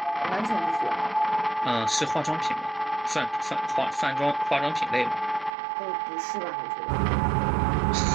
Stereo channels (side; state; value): left; drops out; at 5.6 s